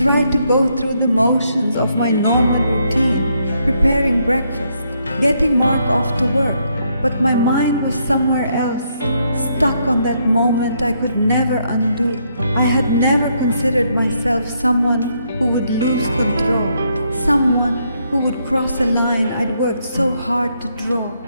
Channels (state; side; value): inverted; both; correlation -0.75